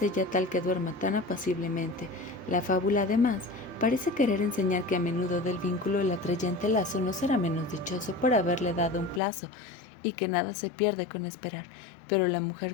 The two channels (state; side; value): drops out; right; at 9.2 s